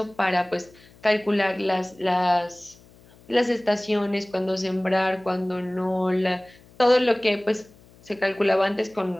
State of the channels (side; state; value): left; noise; hum, 26 dB below the sound